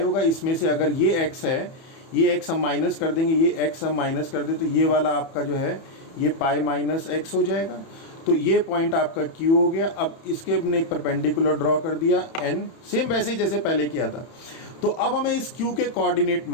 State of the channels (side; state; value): right; late; 31 ms